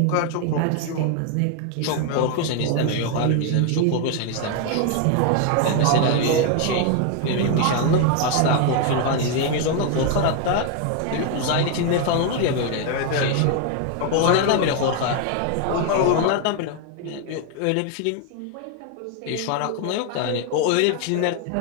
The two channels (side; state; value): both; different; correlation 0.00